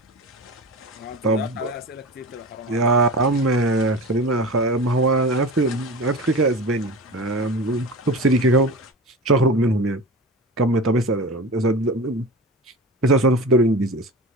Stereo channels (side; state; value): both; normal; correlation 0.31